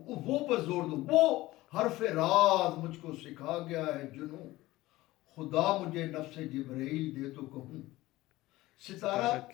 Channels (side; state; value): right; quieter; 18.0 dB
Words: پر زور دو، وہ حرف راز مجھ کو سکھا گیا ہے جنوں، خدا مجھے نفس جبرائیل دے تو کہوں. ستارہ